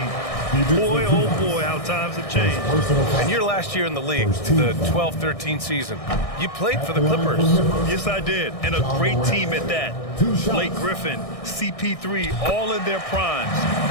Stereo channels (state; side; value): late; right; 1.6 ms